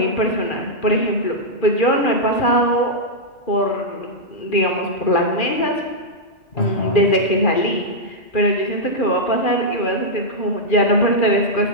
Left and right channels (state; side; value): late; right; 2.4 ms